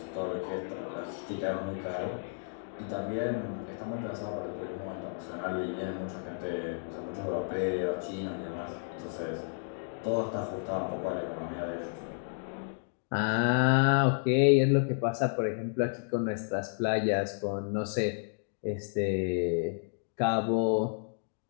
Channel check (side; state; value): right; silent; digital silence